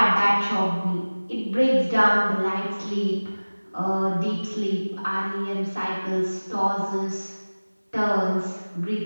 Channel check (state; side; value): inverted; both; correlation -1.00